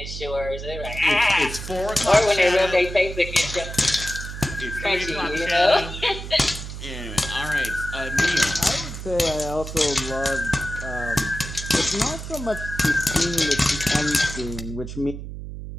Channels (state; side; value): noise; right; hum, 9 dB below the sound